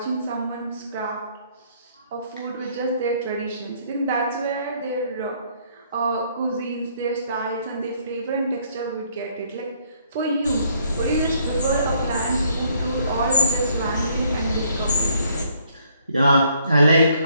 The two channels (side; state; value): both; inverted; correlation -0.67